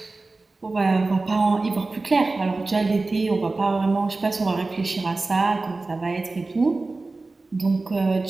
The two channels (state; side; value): quieter; left; 3.4 dB